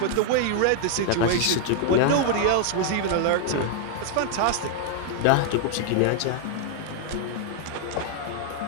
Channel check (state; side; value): different; both; correlation 0.00